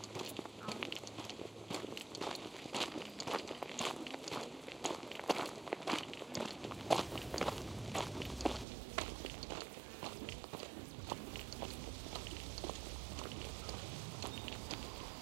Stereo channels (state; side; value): drops out; left; at 8.7 s